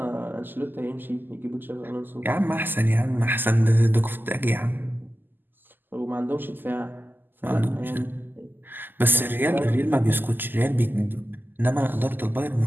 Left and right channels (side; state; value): left; late; 0.091 ms